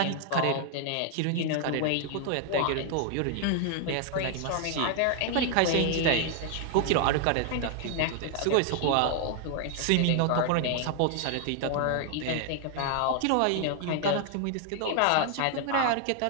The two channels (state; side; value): different; both; correlation 0.00